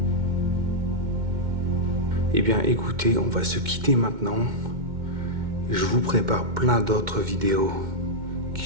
Eh bien écoutez, on va se quitter maintenant. Je vous prépare plein d'autres vidéos qui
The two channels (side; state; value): left; late; 2.1 ms